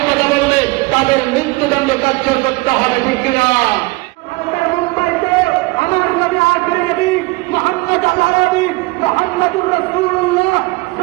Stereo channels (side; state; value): left; quieter; 23.1 dB